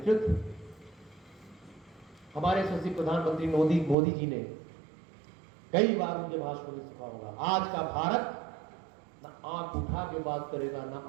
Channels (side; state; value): left; drops out; at 4.0 s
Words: हमारे यशस्वी प्रधानमंत्री मोदी जी ने कई बार उनके भाषणों में सुना होगा, आज का भारत ना आंख उठा के बात करेगा, ना